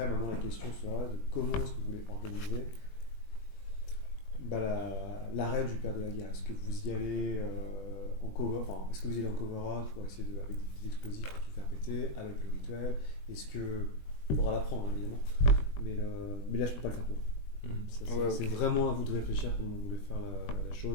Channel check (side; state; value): right; late; 20 ms